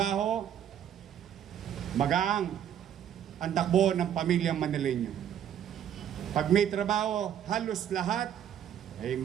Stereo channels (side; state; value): left; quieter; 9.7 dB